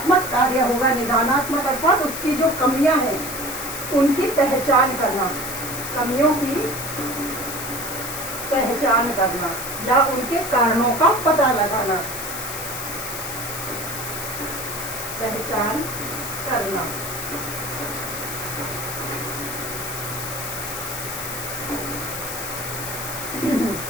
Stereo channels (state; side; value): noise; left; hiss, 7 dB below the sound